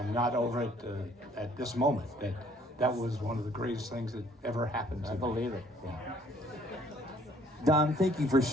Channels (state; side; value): normal; both; correlation 0.60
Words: not over it at this moment. That was one of the greatest things that ever happened to me. I believe it. Yeah. Don, thank you for